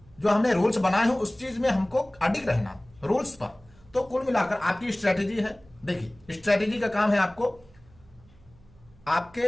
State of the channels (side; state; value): right; noise; hum, 27 dB below the sound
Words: जो हमने रूल्स बनाए हैं उस चीज में हमको अडिग रहना, रूल्स पर। तो कुल मिलाकर आपकी स्ट्रेटेजी है। देखिए, स्ट्रेटेजी का काम है आपको,